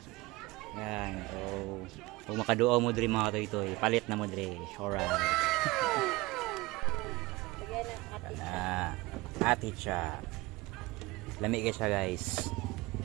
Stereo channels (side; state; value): left; quieter; 21.7 dB